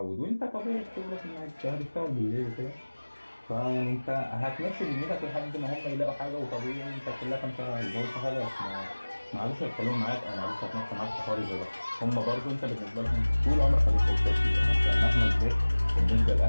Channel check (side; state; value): both; inverted; correlation -1.00